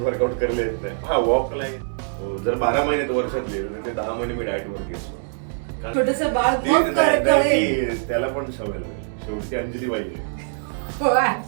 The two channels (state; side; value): silent; left; digital silence